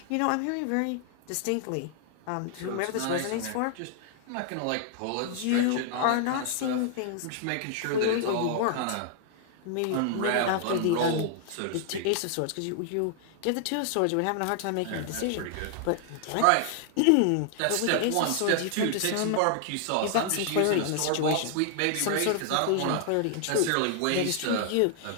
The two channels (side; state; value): both; different; correlation 0.00